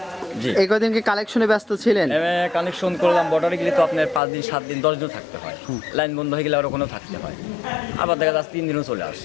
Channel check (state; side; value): drops out; right; at 4.2 s